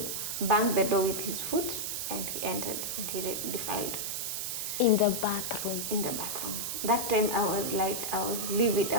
banged the door with his foot, and he entered, and he defiled. In the bathroom? In the bathroom. That time I was livid.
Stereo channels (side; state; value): right; noise; hiss, 2 dB below the sound